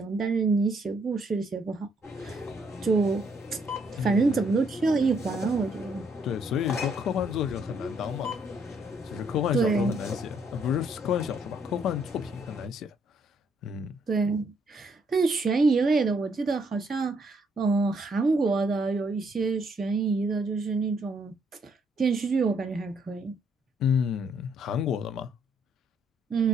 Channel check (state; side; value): normal; both; correlation 0.70